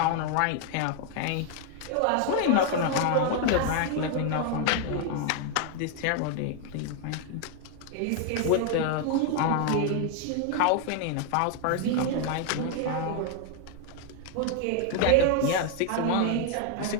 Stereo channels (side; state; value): both; different; correlation 0.00